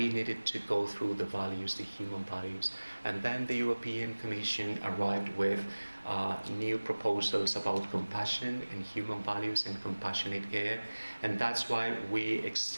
needed to go through the values, the human values. And then the European Commission arrived with new proposals about compassion and human values and compassionate care. And that's why we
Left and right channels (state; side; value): inverted; both; correlation -1.00